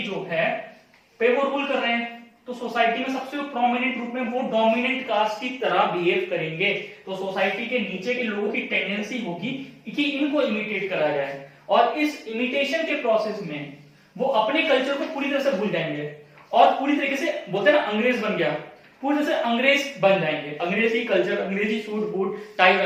जो है पे वो रूल कर रहे हैं, तो सोसाइटी में सबसे प्रोमिनेंट रूप में वो डोमिनेंट कास्ट की तरह बिहेव करेंगे। तो सोसाइटी के नीचे के लोगों की टेंडेंसी होगी कि इनको इमिटेट करा जाए, और इस इमिटेशन के प्रोसेस में वो अपने कल्चर को पूरी तरह से भूल जाएंगे, और पूरी तरीके से बोलते हैं ना अंग्रेज बन गया, पूरी तरह से अंग्रेज बन जाएंगे। अंग्रेजी कल्चर, अंग्रेजी सूट बूट टाई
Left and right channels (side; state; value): both; identical; correlation 1.00